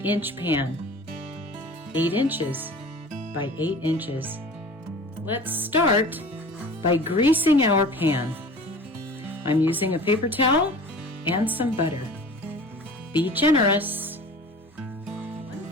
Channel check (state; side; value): normal; both; correlation 0.41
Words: inch pan, 8 inches by 8 inches. Let's start by greasing our pan. I'm using a paper towel and some butter. Be generous. One